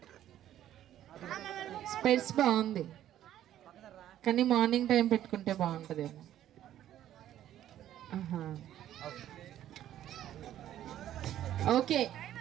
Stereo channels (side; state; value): left; quieter; 12.0 dB